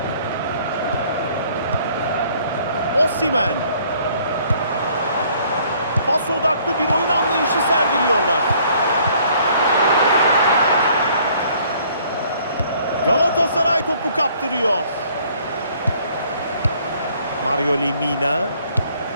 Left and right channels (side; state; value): both; inverted; correlation -0.60